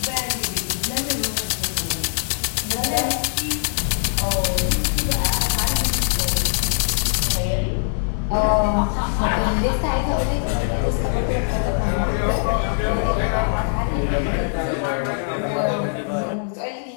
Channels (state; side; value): silent; right; digital silence